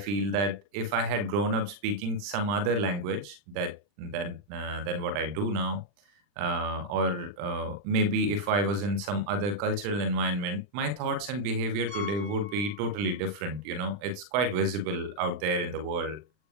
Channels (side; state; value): left; late; 39 ms